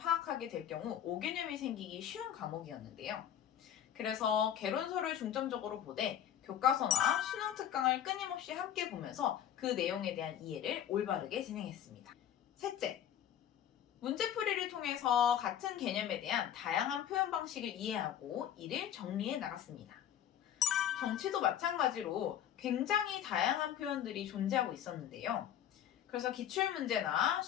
될 경우 오개념이 생기기 쉬운 과목이었는데요. 그래서 개론서를 중점적으로 보되 교과서나 수능 특강을 끊임없이 함께 보면서 그 내용에 대한 이해를 올바르게 진행했습니다. 셋째, 문제풀이를 통해서 같은 개념에 대한 다양한 표현 방식을 이해하고 이를 정리해 나갔습니다. 정치도 마찬가지로 굉장히 다양한 표현들이 존재하고 있었는데요. 그래서 기출문제나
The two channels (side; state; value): right; quieter; 10.3 dB